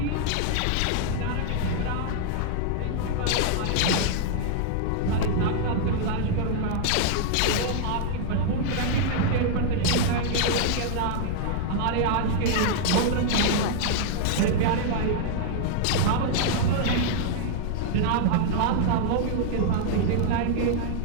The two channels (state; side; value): different; both; correlation -0.01